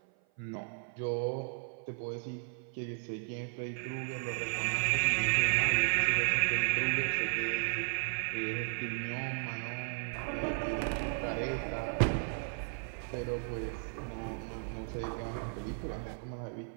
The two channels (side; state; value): left; silent; 55 dB below the other